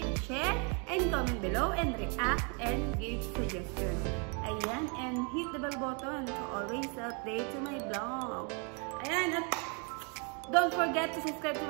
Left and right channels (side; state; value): left; quieter; 36.4 dB